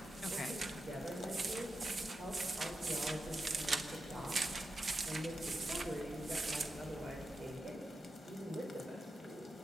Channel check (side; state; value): both; normal; correlation 0.89